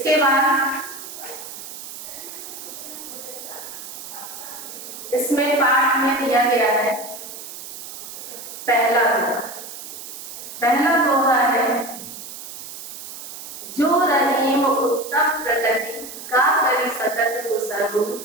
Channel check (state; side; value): noise; right; hiss, 11 dB below the sound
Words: बाद इसमें पाठ में दिया गया है पहला दोहा। पहला दोहा है जो रहीम उत्तम प्रकृति का करी सकत कुसरु